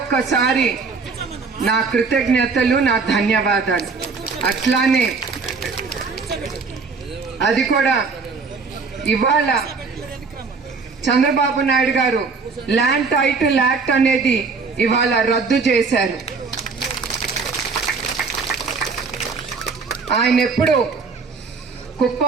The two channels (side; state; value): left; quieter; 4.6 dB